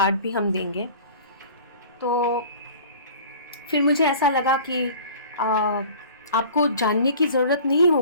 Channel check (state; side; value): inverted; both; correlation -0.44